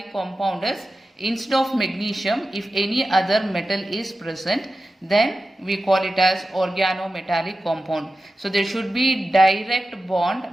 compound is instead of magnesium, if any other metal is present, then we call it as organometallic compound. So there should be direct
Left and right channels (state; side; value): normal; both; correlation 0.93